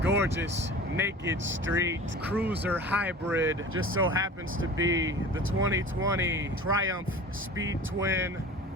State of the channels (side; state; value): both; normal; correlation 0.39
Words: gorgeous naked street cruiser hybrid just so happens to be the 2020 Triumph Speed Twin